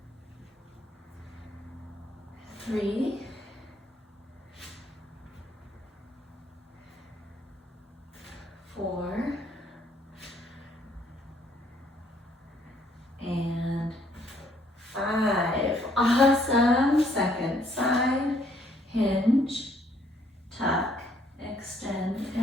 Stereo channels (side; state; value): both; normal; correlation 0.67